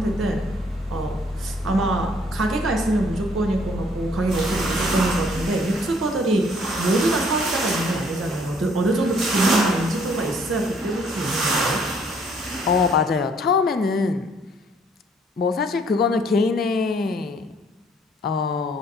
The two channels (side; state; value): both; normal; correlation 0.63